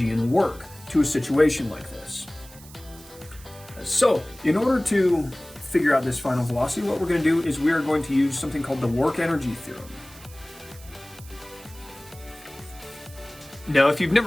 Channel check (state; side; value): noise; right; hiss, 20 dB below the sound